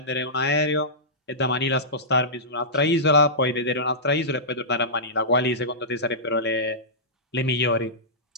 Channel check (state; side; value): normal; both; correlation -0.17